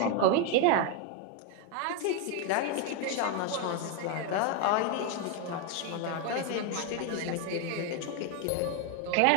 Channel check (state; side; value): different; both; correlation 0.01